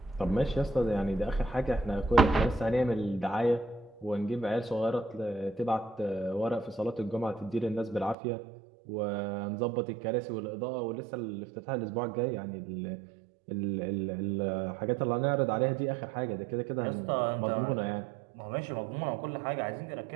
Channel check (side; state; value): left; drops out; at 8.2 s